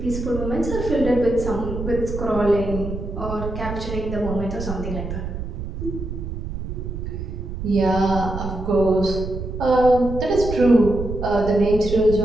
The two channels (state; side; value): noise; right; rumble, 6 dB below the sound